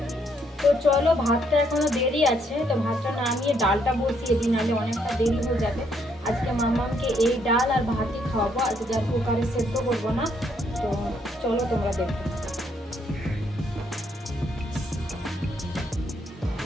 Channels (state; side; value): normal; both; correlation 0.72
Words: তো চলো, ভাতটা এখনো দেরি আছে, তো ভাতটা নামিয়ে ডালটা বসিয়ে দিই, নাহলে অনেকটা দেরি হয়ে যাবে। আজকে মামামকে এই ডাল আর ভাতই খাওয়াবো, আজকে আর কুকারে সেদ্ধ করবো না। তো চলো তোমরা দেখো।